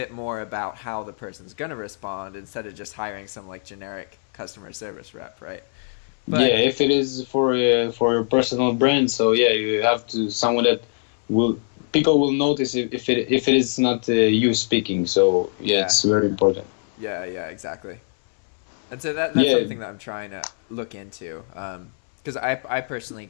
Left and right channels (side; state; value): right; silent; 64 dB below the other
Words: more about how the person's going to respond, instead of just hiring some generic customer service rep, right? But, if it is for your personal brand, so you have to someone that people will notice if it is not you speaking. So it's very important. Yeah, exactly. And so that's something that I'm trying to look into, because I personally